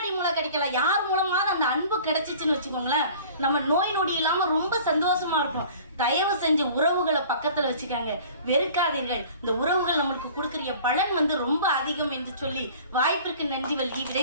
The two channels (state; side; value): inverted; both; correlation -0.46